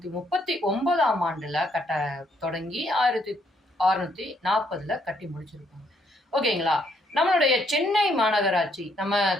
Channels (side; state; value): both; normal; correlation 0.71